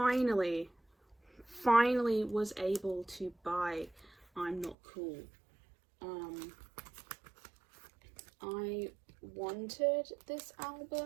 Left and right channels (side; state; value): left; drops out; at 4.8 s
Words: was able to buy I'm Not Cool. I wanted this